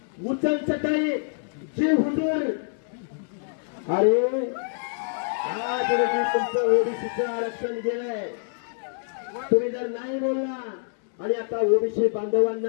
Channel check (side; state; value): right; silent; digital silence